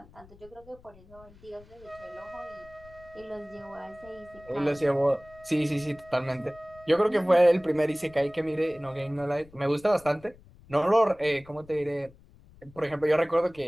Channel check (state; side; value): noise; left; rumble, 24 dB below the sound